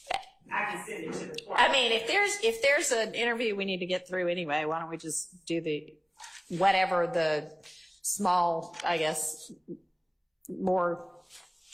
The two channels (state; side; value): identical; both; correlation 1.00